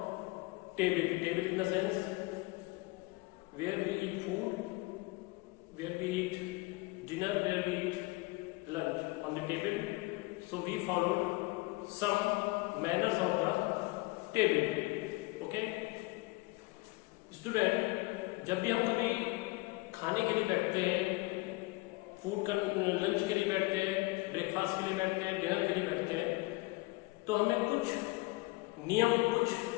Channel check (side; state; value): right; quieter; 23.6 dB